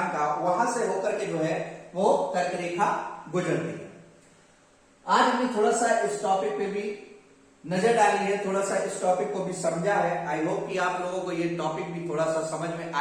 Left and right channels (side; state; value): both; identical; correlation 1.00